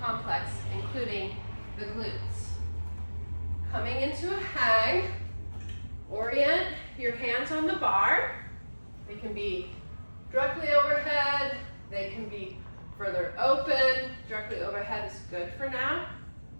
complex, including the glutes. Coming into a hang, orient your hands on the bar. They can be directly overhead, they can be further open. Directly overhead is good for now.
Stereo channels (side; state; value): both; inverted; correlation -1.00